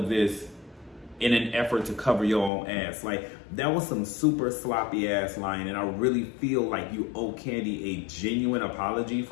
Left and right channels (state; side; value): drops out; right; at 2.5 s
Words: this in an effort to cover your own ass. Like, that was some super sloppy ass line, and I really feel like you owe Kandi a genuine apology